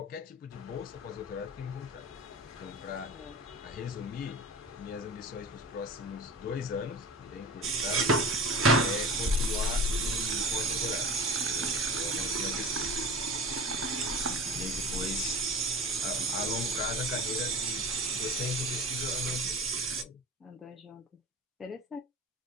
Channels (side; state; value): both; normal; correlation 0.34